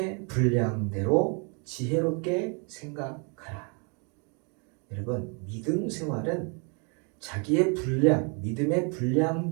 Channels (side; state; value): left; quieter; 36.6 dB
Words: 분량대로 지혜롭게 생각하라. 여러분, 믿음 생활은 자기의 분량, 믿음의